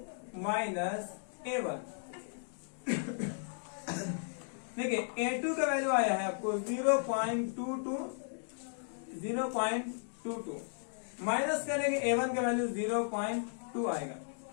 माइनस A1। देखिए A2 का वैल्यू आया है आपको 0.22 माइनस करेंगे A1 का वैल्यू 0.2 आएगा।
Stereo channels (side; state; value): right; silent; digital silence